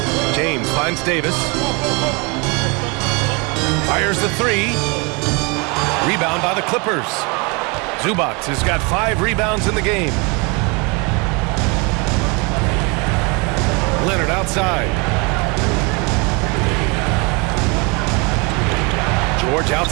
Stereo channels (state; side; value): quieter; left; 29.9 dB